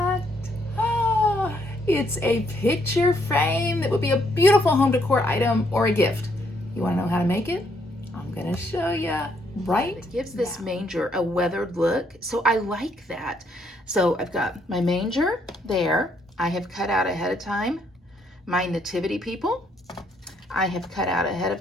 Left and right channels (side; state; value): both; normal; correlation 0.71